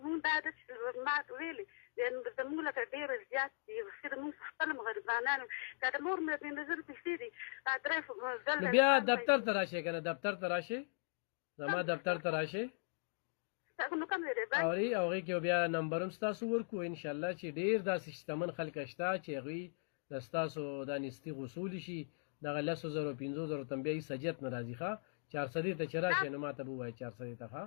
مونږ دا ده چې ما ویلې زموږ لکه ډېر زیات دي خو مونږ خپل هم غریبانان که د مور مې 15,000 پیسې دي نو بیا دفتر ته راشئ که نه دفتر ته راشئ زما دفتر ته راشئ اوري او هغې کې بیا نمبر هم ستاسو ورکړو انشاءالله چې ډېر داسې شتمن خلک شته چې هغوی د ستاسو دا نیستي غوصولی شي دغه 10,000 15,000 ته بیا هېڅ حاجت نه راځي ښه 400 ته چې راشئ نو ما ته به ووایه 400 ته ښه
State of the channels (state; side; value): silent; right; digital silence